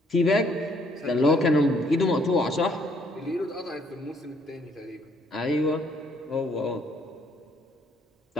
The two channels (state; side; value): normal; both; correlation 0.67